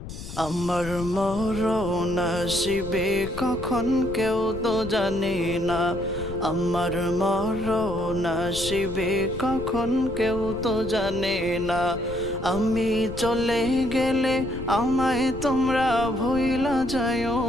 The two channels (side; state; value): left; noise; rumble, 10 dB below the sound